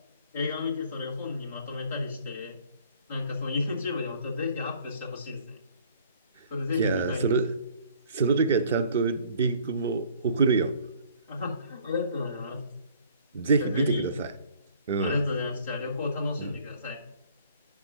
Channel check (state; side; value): inverted; both; correlation -0.55